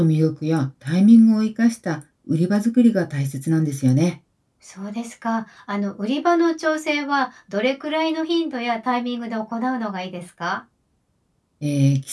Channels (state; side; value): identical; both; correlation 1.00